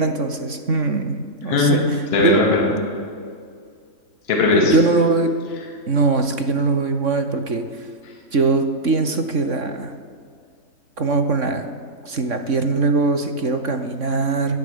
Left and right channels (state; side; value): late; left; 3.6 ms